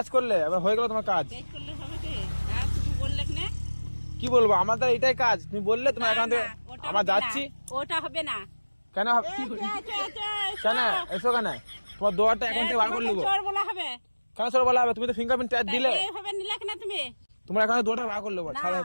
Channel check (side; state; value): both; inverted; correlation -1.00